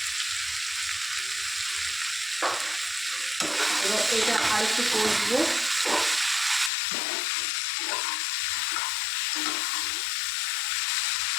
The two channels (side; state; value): right; drops out; at 6.7 s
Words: এবার এটা আর একটু কষবো।